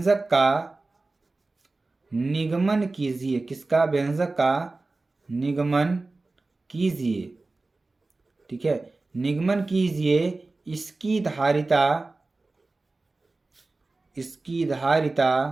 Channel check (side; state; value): left; quieter; 3.3 dB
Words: का निगमन कीजिए, किसका, व्यंजक का निगमन कीजिए, ठीक है, निगमन कीजिए। इसकी धारिता